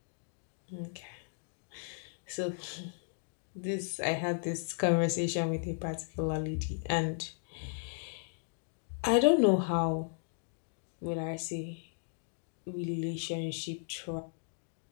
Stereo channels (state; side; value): silent; right; digital silence